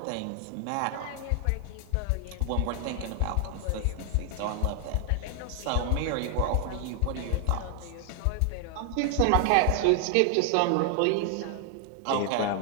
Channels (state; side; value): different; both; correlation 0.00